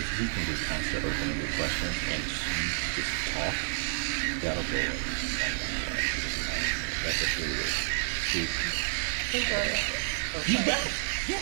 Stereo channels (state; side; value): silent; left; digital silence